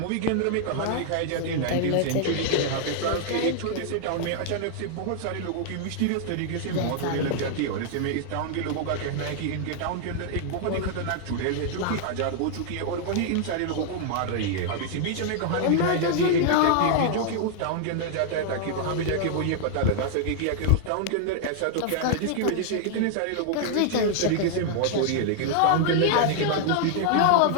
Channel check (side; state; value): both; different; correlation -0.01